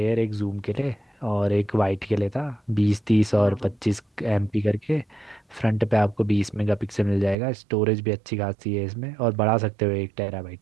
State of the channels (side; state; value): left; drops out; at 7.4 s